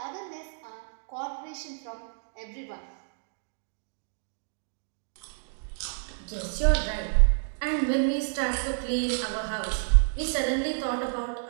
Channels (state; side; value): silent; left; digital silence